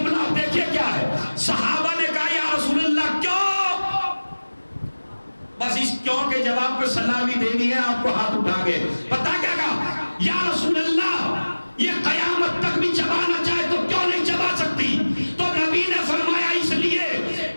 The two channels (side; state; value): both; inverted; correlation -1.00